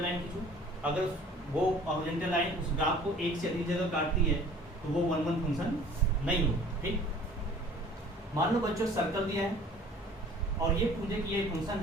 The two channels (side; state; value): both; normal; correlation 0.50